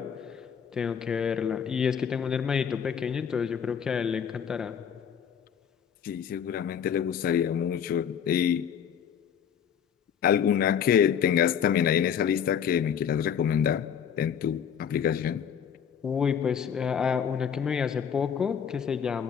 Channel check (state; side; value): quieter; right; 8.0 dB